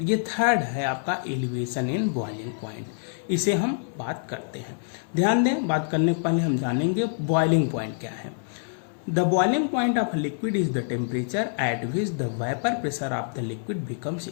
ये थर्ड है आपका एलिवेशन इन बॉइलिंग पॉइंट। इसे हम बात करते हैं। ध्यान दें, बात करने के पहले हम जानेंगे बॉइलिंग पॉइंट क्या है। The boiling point of liquid is the temperature at which the vapour pressure of the liquid becomes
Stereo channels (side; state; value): right; silent; 60 dB below the other